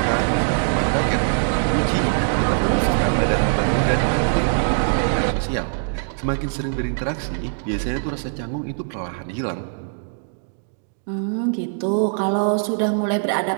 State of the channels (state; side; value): silent; left; digital silence